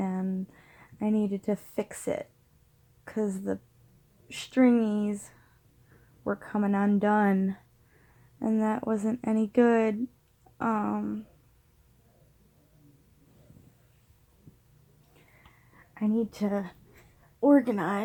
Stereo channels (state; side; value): identical; both; correlation 1.00